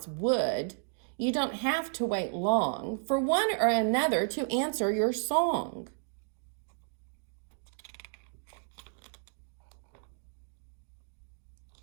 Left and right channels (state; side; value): silent; left; digital silence